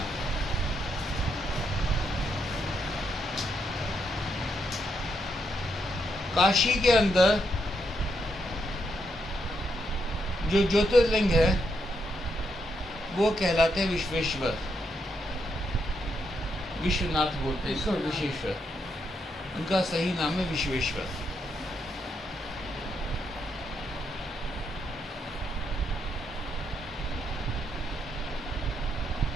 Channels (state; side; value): normal; both; correlation 0.79